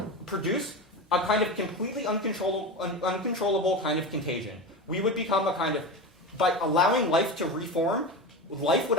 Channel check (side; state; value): both; normal; correlation 0.23